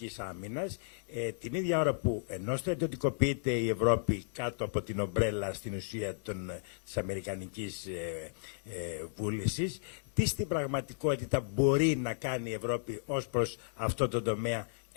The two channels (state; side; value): silent; right; 55 dB below the other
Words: άμυνας, την ίδια ώρα που ενώ στρατιωτικοποιείται η Ευρώπη κάτω από την ομπρέλα στην ουσία της αμερικανικής βούλησης, τι στην πραγματικότητα μπορεί να κάνει η Ευρώπη ως προς αυτό το τομέα